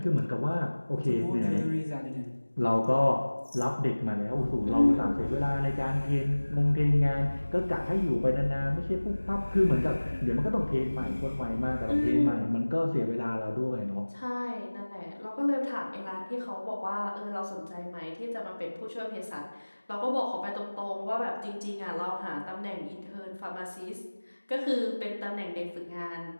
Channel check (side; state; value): both; inverted; correlation -1.00